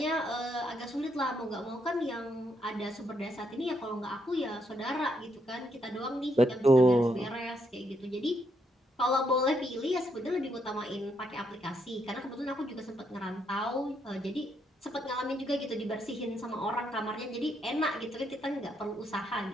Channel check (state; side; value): normal; both; correlation 0.76